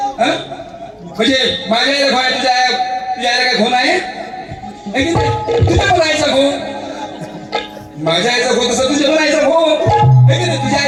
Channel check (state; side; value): identical; both; correlation 1.00